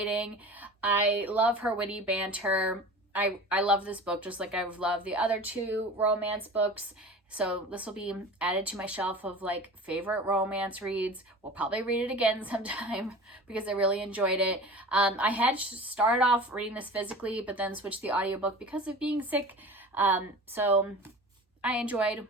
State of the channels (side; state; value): both; normal; correlation 0.36